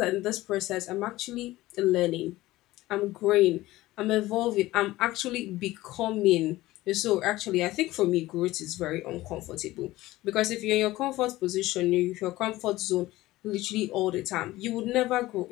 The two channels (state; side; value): quieter; right; 17.5 dB